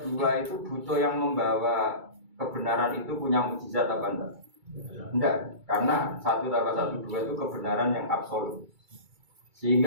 2 itu butuh yang membawa kebenaran itu punya mukjizat apa enggak? Enggak, karena 1 tambah 1, 2 itu kebenaran yang absolut.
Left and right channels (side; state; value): left; late; 2.3 ms